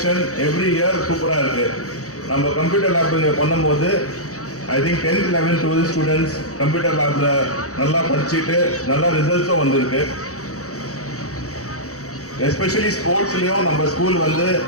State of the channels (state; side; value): late; right; 0.65 ms